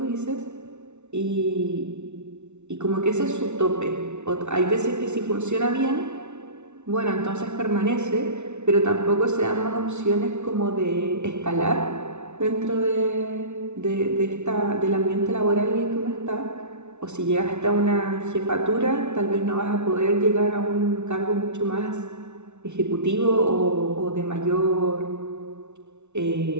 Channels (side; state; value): left; late; 0.82 ms